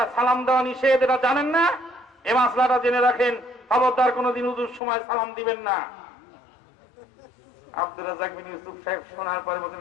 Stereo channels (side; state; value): right; drops out; at 4.8 s